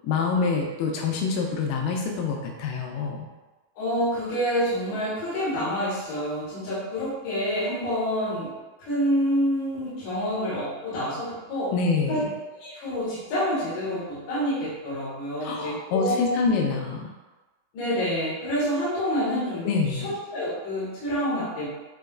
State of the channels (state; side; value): late; right; 18 ms